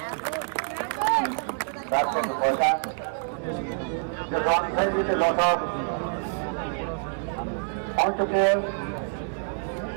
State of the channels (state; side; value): silent; left; 60 dB below the other